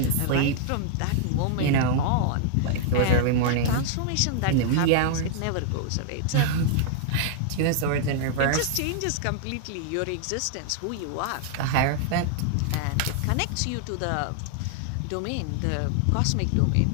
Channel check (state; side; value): different; both; correlation -0.01